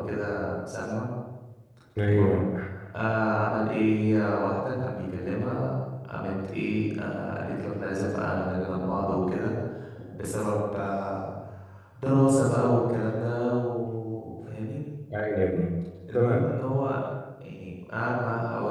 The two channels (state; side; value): identical; both; correlation 1.00